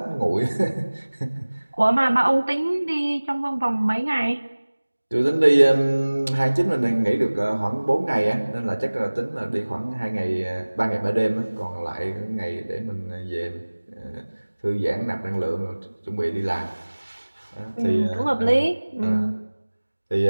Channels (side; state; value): both; inverted; correlation -1.00